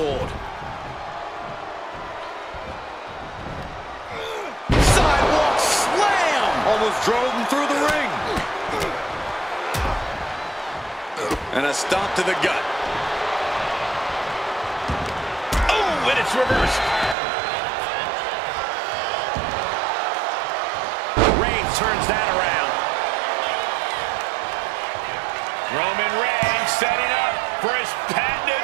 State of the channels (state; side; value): drops out; left; at 17.2 s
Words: Sidewalk slam. Almost drove him through the ring. And a stomp to the gut. Oh, and it's reversed. Turns that around. Roman Reigns setting up for his patented